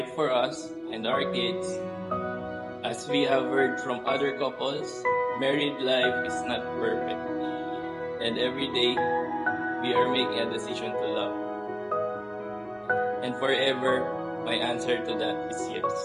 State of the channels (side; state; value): both; identical; correlation 1.00